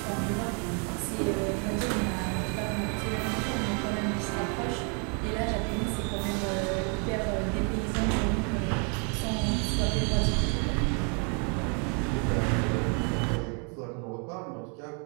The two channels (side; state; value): left; quieter; 37.6 dB